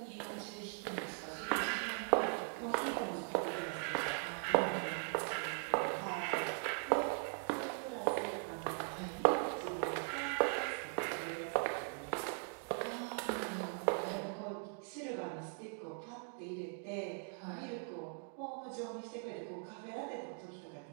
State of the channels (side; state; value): left; silent; 51 dB below the other